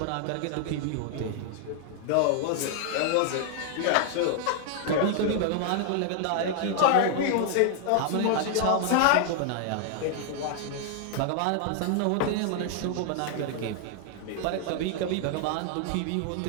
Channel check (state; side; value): different; both; correlation 0.00